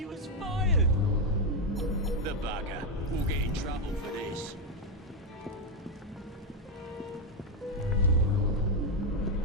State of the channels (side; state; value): both; normal; correlation 0.04